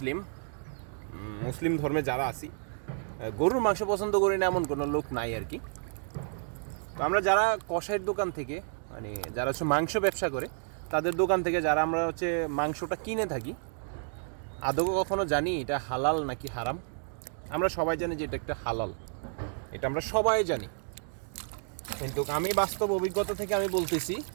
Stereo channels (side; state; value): left; silent; 57 dB below the other